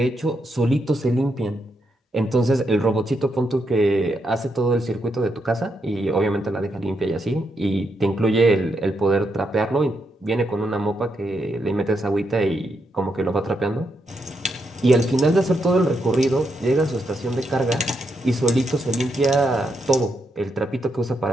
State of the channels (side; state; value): both; normal; correlation 0.81